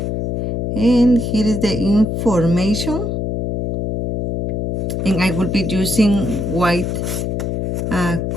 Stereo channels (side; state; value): left; noise; hum, 1 dB below the sound